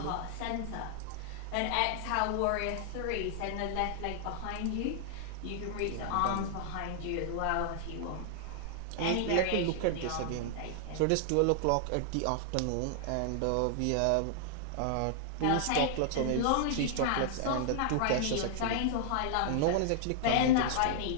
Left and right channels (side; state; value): both; different; correlation -0.01